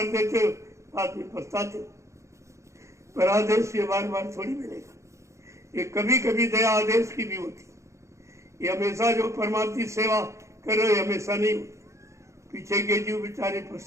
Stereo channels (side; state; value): left; late; 0.14 ms